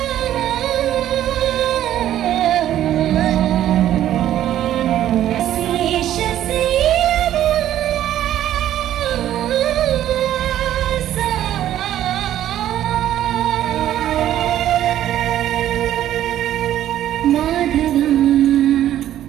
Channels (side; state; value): left; quieter; 12.1 dB